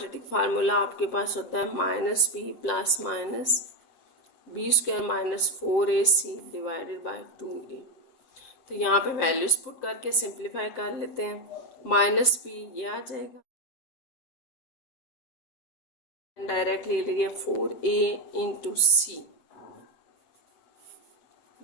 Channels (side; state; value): right; late; 7.6 ms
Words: फार्मूला आपके पास होता है -b ± b² - 4ac / 2a। तो यहाँ पे वैल्यूज पुट करके सिंप्लीफाई कर लेते हैं। -b ये आ जाएगा, डायरेक्टली ले लिया 4a × c